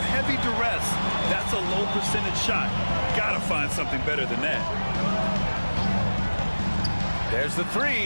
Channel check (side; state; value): both; inverted; correlation -1.00